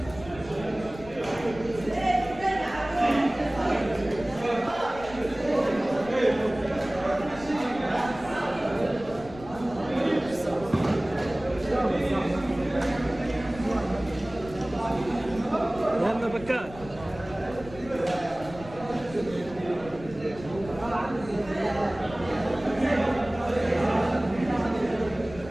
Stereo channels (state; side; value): noise; left; rumble, 16 dB below the sound